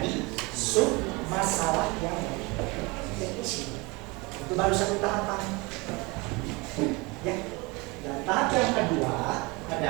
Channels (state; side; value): quieter; left; 26.0 dB